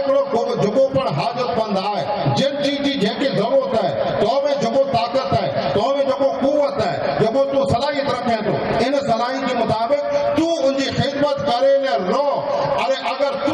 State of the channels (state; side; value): identical; both; correlation 1.00